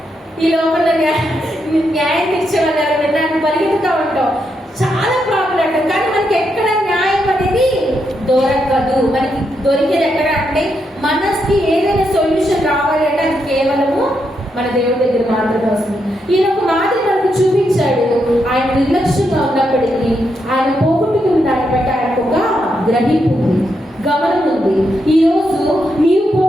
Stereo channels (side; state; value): both; normal; correlation 0.81